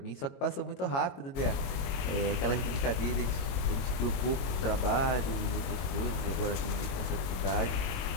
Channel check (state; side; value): late; right; 22 ms